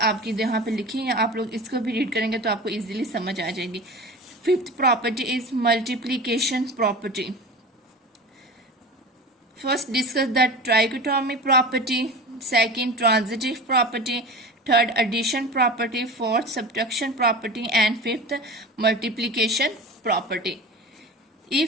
यहाँ पे लिखी हैं, आप लोग इसको भी रीड करेंगे तो आपको इजीली समझ आ जाएगी। Fifth property is multiplication property. First discuss the trichotomy property, second transitive property, third edition property, fourth subtraction property and fifth multiplication property.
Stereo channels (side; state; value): both; normal; correlation 0.33